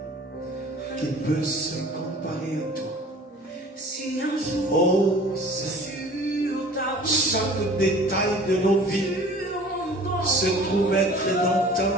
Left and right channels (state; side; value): normal; both; correlation 0.46